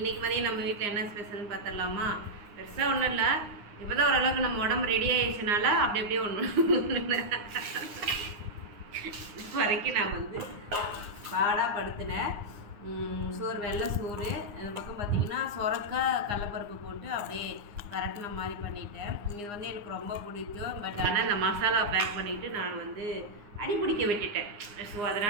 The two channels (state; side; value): late; left; 9.8 ms